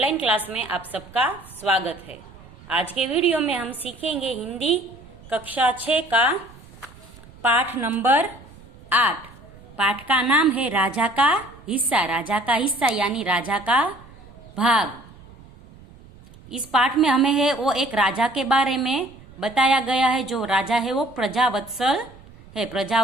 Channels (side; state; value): right; noise; rumble, 22 dB below the sound